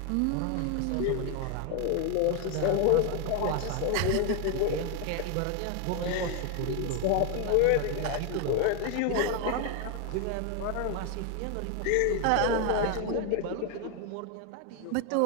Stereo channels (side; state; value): both; different; correlation 0.01